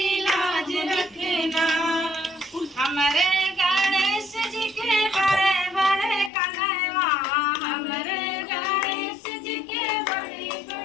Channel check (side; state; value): right; drops out; at 6.3 s